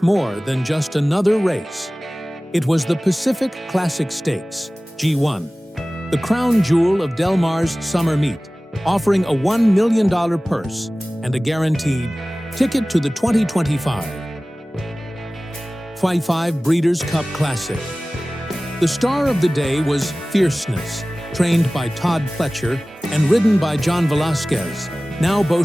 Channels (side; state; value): both; normal; correlation 0.98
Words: more than just another race. It was the Pacific Classic Stakes, G1, the crown jewel of Del Mar's summer meet, offering a $1 million purse and a guaranteed ticket to the 2025 Breeders' Cup Classic. The star of the day was Fierceness, trained by Todd Pletcher and ridden by John Velázquez, now